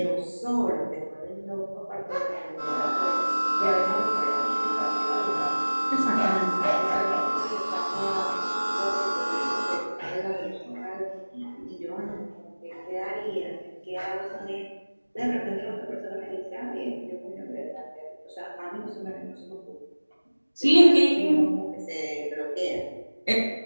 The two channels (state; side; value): inverted; both; correlation -1.00